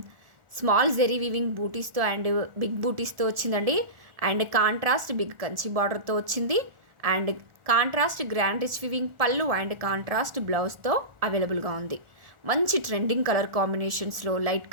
స్మాల్ జెరీ వీవింగ్ బూటీస్తో అండ్ బిగ్ బూటీస్తో వచ్చిందండి. అండ్ కాంట్రాస్ట్ బిగ్ కంచి బార్డర్తో వచ్చింది. And contrast grand rich weaving పళ్ళు అండ్ కాంట్రాస్ట్ బ్లౌజ్తో అవైలబుల్గా ఉంది. మంచి ట్రెండింగ్ కలర్ కాంబినేషన్స్లో, లైట్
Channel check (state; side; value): late; left; 1.4 ms